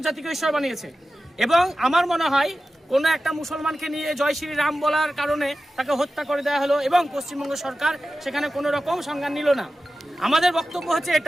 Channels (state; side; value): normal; both; correlation 0.94